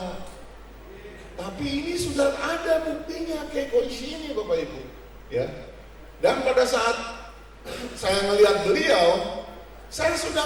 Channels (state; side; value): identical; both; correlation 1.00